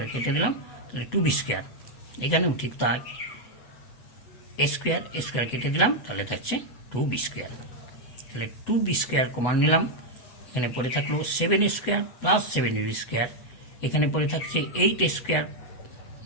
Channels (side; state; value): right; late; 8.0 ms